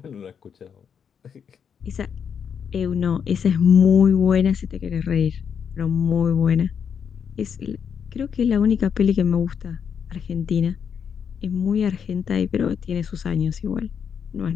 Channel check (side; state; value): right; quieter; 7.3 dB